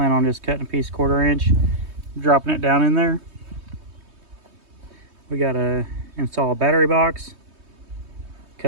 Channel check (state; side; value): late; left; 3.2 ms